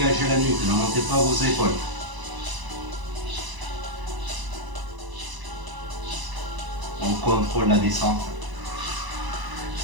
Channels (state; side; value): late; left; 1.0 ms